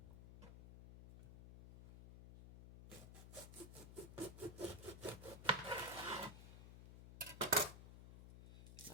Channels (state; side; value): noise; left; hum, 13 dB below the sound